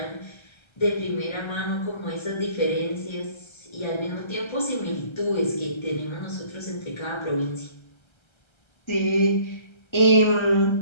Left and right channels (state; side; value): late; right; 1.3 ms